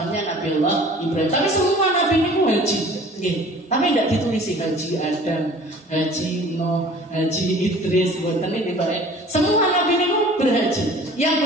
Nabiullah Ibrahim. Tapi semua nabi itu haji, tapi tidak ditulis haji Adam, haji Nuh, haji Idris, ini baik. Semua nabi itu berhaji.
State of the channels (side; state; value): both; normal; correlation 0.47